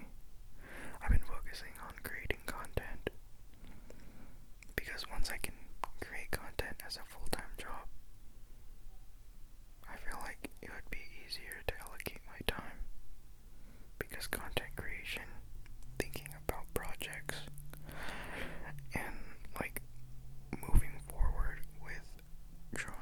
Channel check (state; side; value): identical; both; correlation 1.00